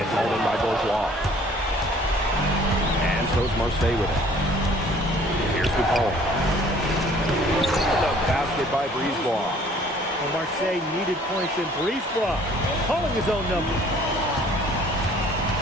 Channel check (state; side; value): normal; both; correlation 0.55